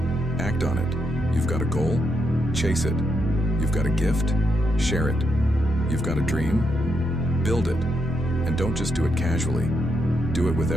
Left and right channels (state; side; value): normal; both; correlation 0.81